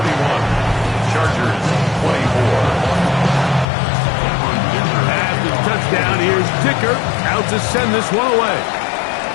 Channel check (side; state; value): right; drops out; at 3.7 s